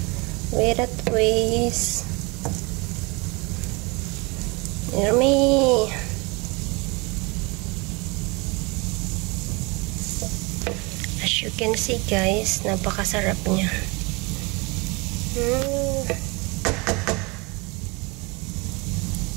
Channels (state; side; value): quieter; left; 27.5 dB